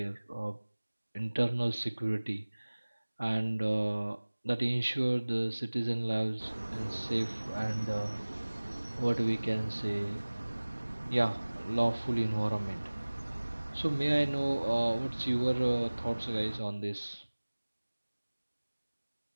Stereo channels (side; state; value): both; inverted; correlation -1.00